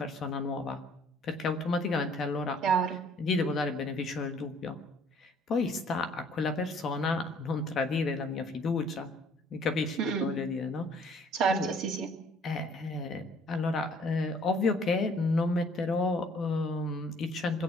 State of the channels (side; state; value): both; normal; correlation 0.58